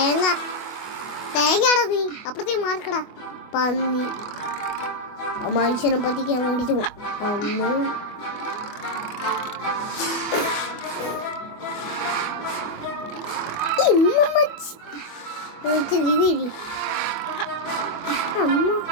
തേങ്ങയാടാ നീ, അപ്പുറത്തേക്ക് മാർക്കടാ പന്നി. മനുഷ്യനെ പറ്റിക്കാൻ വേണ്ടിട്ട് അന്ന്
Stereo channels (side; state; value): right; late; 24 ms